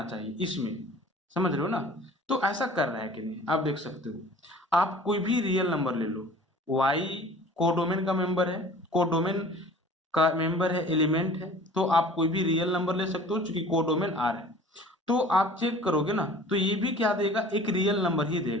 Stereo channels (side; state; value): both; normal; correlation 0.46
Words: चाहिए, इसमें, समझ रहे हो ना। तो ऐसा कर रहा है कि नहीं, आप देख सकते हो, आप कोई भी रियल नंबर ले लो, y कोडोमेन का मेंबर है, कोडोमेन का मेंबर है, एलिमेंट है, तो आप कोई भी रियल नंबर ले सकते हो चूंकि कोडोमेन r है। तो आप चेक करोगे ना तो ये भी क्या देगा, एक रियल नंबर ही